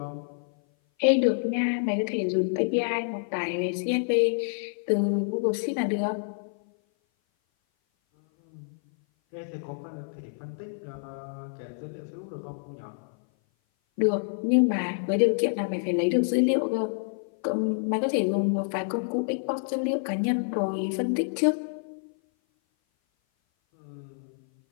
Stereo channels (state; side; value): silent; right; 56 dB below the other